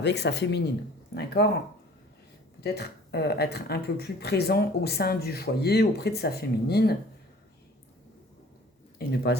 sa féminine. D'accord? Peut-être être un peu plus présent au sein du foyer, auprès de sa féminine, et ne pas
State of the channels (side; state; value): both; normal; correlation 0.49